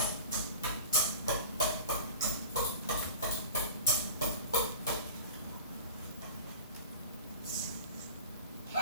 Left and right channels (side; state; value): both; inverted; correlation -0.38